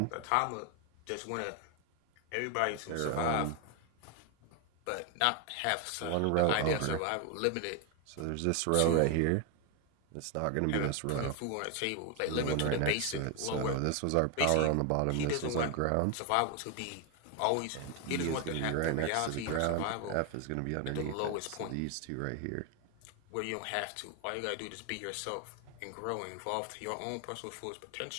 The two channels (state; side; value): different; both; correlation 0.01